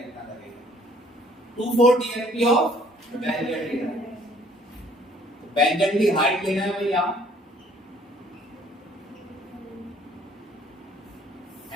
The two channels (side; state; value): both; normal; correlation 0.59